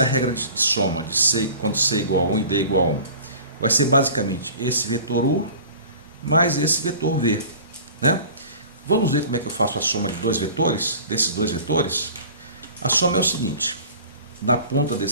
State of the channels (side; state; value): both; inverted; correlation -0.42